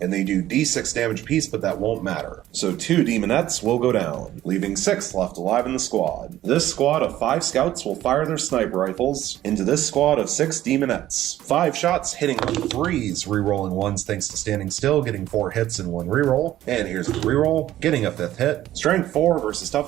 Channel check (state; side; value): quieter; left; 13.6 dB